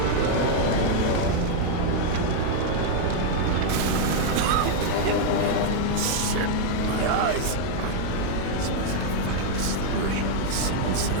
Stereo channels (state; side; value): different; both; correlation 0.00